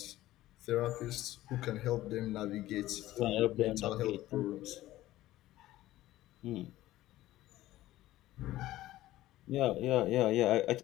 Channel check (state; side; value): quieter; right; 15.6 dB